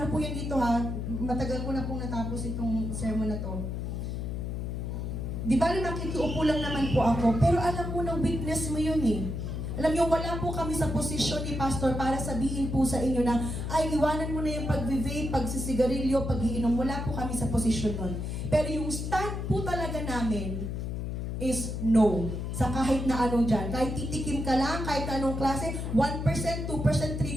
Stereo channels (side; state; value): left; noise; hum, 4 dB below the sound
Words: po yan dito ha, matagal ko na pong natapos itong sermon na to. Di ba makikiupo lang naman po ako, pero alam mo na weakness mo yun eh. Alam niyo, wala po kami sa posisyon ni Pastor para sabihin po sa inyo na, ay, iwanan mo na yung pag-vape, pagsisigarilyo, pag-iinom. Wala po kami sa posisyon nun. Pero yung stand po talaga namin is no. Sa kahit na anong dyan. Kahit titikim ka lang, kahit anong klase, 1%, 2%,